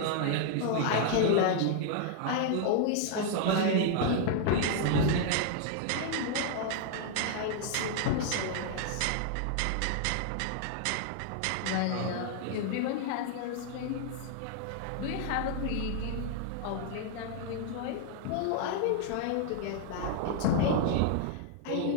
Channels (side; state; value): both; different; correlation 0.00